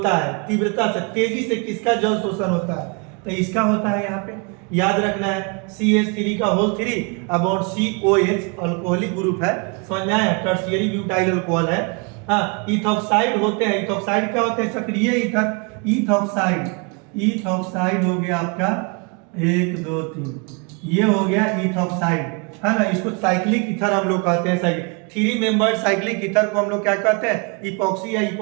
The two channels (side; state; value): left; quieter; 32.8 dB